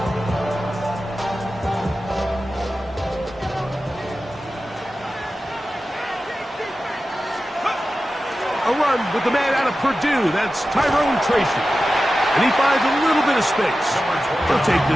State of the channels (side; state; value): both; normal; correlation 0.94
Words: A run with the man out of Purdue. That's Tyrone Tracy. And he finds a little bit of space. He'll take